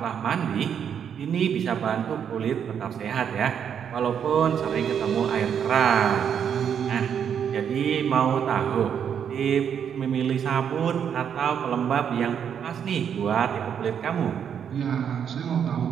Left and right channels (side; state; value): left; quieter; 8.1 dB